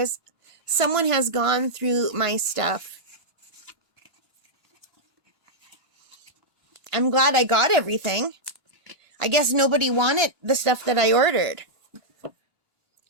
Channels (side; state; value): right; late; 2.9 ms